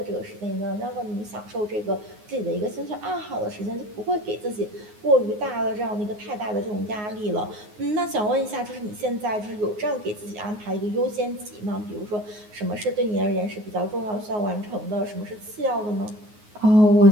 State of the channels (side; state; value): left; late; 9.5 ms